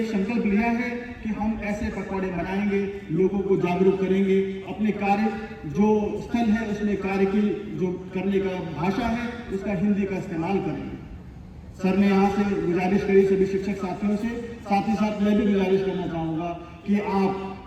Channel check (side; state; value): both; identical; correlation 1.00